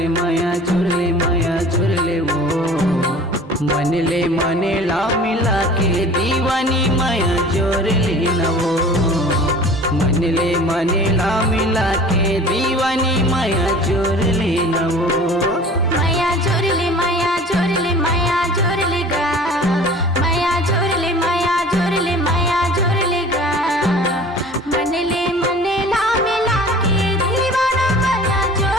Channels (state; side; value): normal; both; correlation 0.44